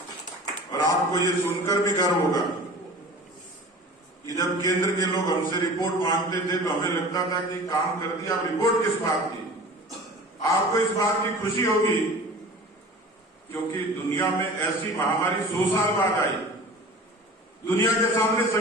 और आपको ये सुनकर भी गर्व होगा कि जब केंद्र के लोग हमसे रिपोर्ट मांगते थे तो हमें लगता था कि काम कर दिया, अब रिपोर्ट किस बात की। आपको इस बात की खुशी होगी क्योंकि दुनिया में ऐसी महामारी 100 साल बाद आई, दुनिया के सामने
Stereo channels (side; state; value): both; normal; correlation 0.40